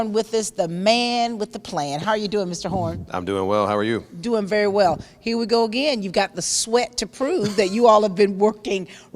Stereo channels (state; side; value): identical; both; correlation 1.00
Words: with us, the man with the plan. How are you doing, Mr. Horn? I'm doing well. How are you? Doing very well. Here we go again. You've got the sweat to prove that you all have been working